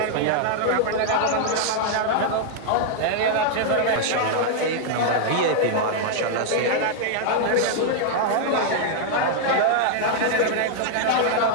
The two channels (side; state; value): both; different; correlation -0.01